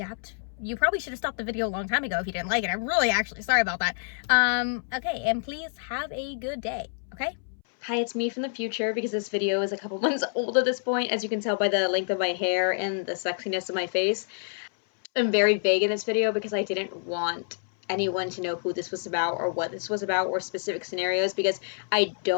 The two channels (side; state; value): right; silent; 60 dB below the other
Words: You probably should have stopped the video a long time ago if you didn't like it. I'm really actually sorry about that. Okay, and please have a good day, okay? Hi, it's me from the future because this video is a couple months old at this point, as you can tell by the length of my hair and the sexiness of my face. I'm very vague in this video because I didn't want anyone to know who this was about or what this was about or specific scenarios, because I